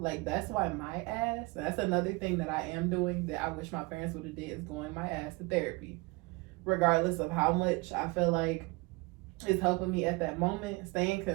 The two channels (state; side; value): quieter; left; 25.3 dB